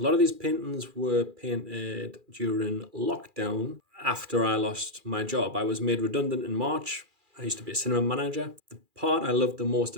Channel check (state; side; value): late; left; 2.4 ms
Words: lot of these paintings were painted during lockdown after I lost my job. I was made redundant in March. I used to be a cinema manager. The part I love the most